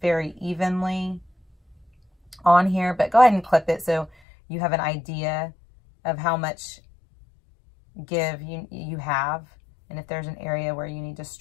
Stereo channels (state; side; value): drops out; right; at 4.1 s